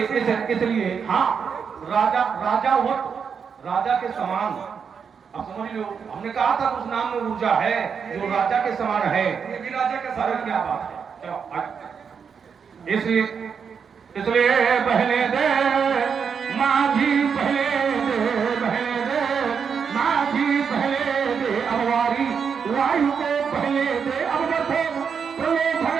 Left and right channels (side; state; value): left; quieter; 6.5 dB